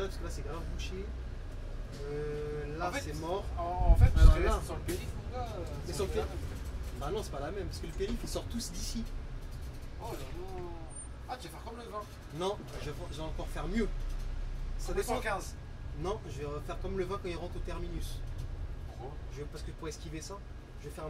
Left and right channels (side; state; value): both; identical; correlation 1.00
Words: parce que là, c'est grave bouché. Là, En fait, c'est mort. En fait, Alors je serais là- resté sur le périph', mon gars. Mais sur le c'est la périph'. même. Bah non, c'est pas la même. Parce que le périph', ils sortent tous d'ici. Oh là là. Ah, tu vas faire comme le vin. Non, je vais encore faire mieux. Ça dépend. 215. Non, je vais faire comme le vin quand il rentre au terminus. Gros. Parce que pour esquiver ça, je vais faire un